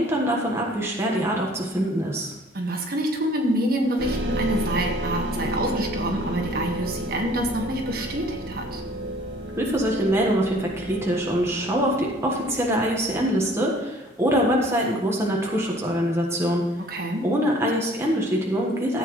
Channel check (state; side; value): normal; both; correlation 0.54